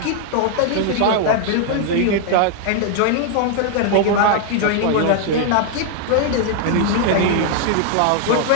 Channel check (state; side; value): different; both; correlation 0.00